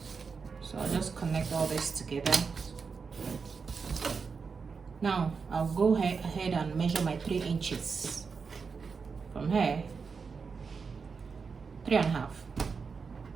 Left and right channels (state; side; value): quieter; left; 5.3 dB